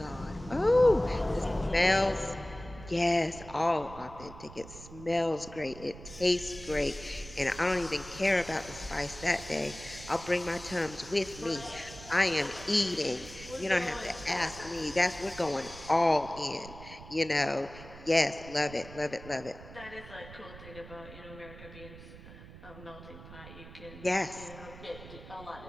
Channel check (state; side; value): noise; right; rumble, 16 dB below the sound